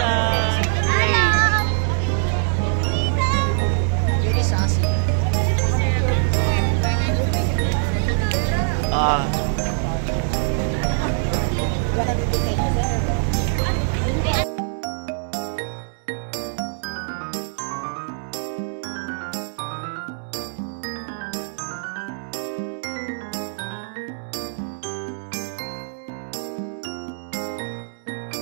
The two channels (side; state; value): left; silent; digital silence